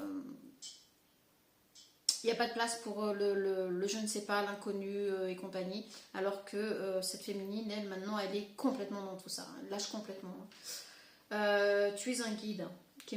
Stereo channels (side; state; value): both; identical; correlation 1.00